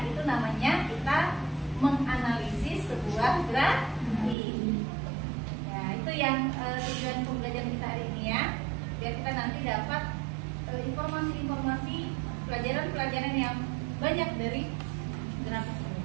itu namanya kita menganalisis sebuah grafik. Ya, itu yang tujuan pembelajaran kita hari ini ya. Biar kita nanti dapat informasi-informasi pelajaran-pelajaran yang banyak dari grafik ini.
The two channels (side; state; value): left; drops out; at 4.4 s